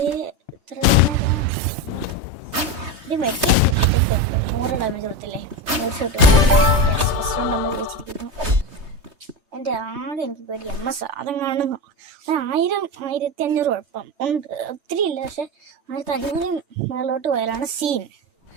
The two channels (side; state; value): left; late; 3.2 ms